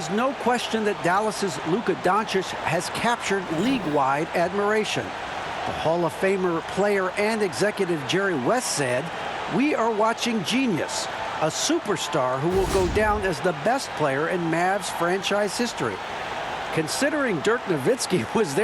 no question that Dallas's Luka Doncic has captured league-wide admiration. The Hall of Famer player and executive Jerry West said, "We are watching genius, a superstar who will go down as the best player in Mavs franchise history." Considering Dirk Nowitzki was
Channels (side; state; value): both; identical; correlation 1.00